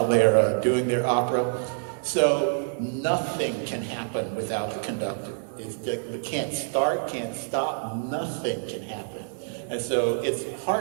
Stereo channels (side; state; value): left; silent; digital silence